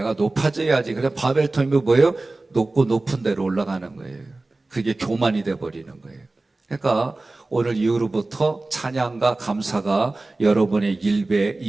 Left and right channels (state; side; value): quieter; left; 3.1 dB